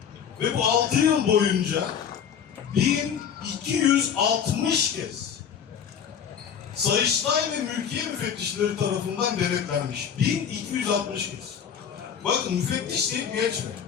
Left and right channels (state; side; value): quieter; right; 7.9 dB